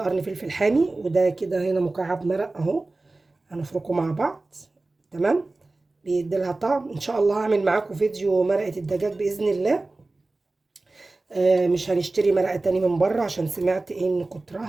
قرن فلفل حامي، وده كده هنا مكعب مرق اهو. هنفركه مع بعض. تمام. بيديلها طعم. ان شاء الله هعمل معاكم فيديو مرقه الدجاج باذن الله. مش هنشتري مرقه تاني من بره، عشان سمعت ان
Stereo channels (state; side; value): quieter; left; 3.2 dB